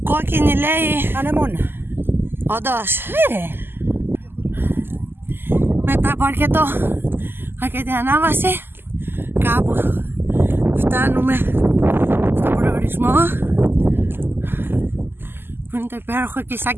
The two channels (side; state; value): left; late; 0.10 ms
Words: Κόκκινη λέει. Ανεμόνα. Όντως. Ναι ρε. Μετά από αρκετή ανάβαση, κάπου φτάνουμε στον προορισμό, που είναι το υπέροχο